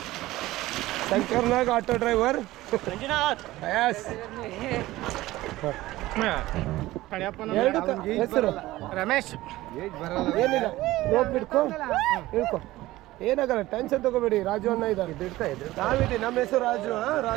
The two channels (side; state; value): left; quieter; 17.2 dB